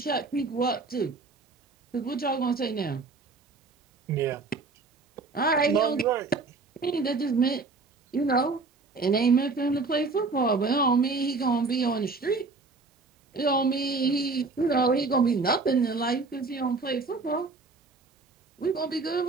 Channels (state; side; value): quieter; left; 4.0 dB